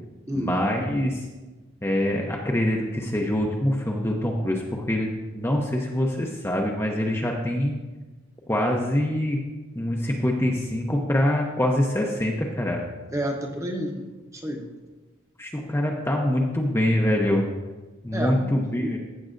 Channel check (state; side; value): normal; both; correlation 0.83